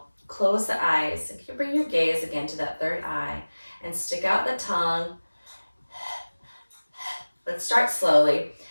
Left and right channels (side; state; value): both; inverted; correlation -1.00